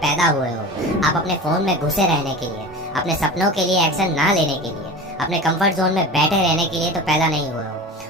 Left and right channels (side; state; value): both; normal; correlation 0.33